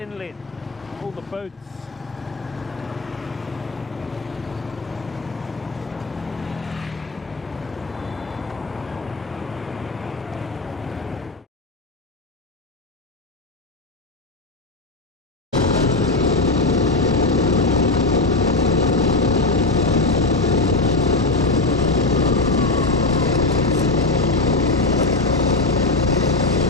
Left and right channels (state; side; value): quieter; right; 3.2 dB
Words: All the boats.